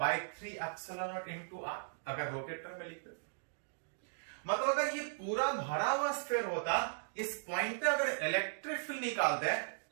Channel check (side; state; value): left; silent; digital silence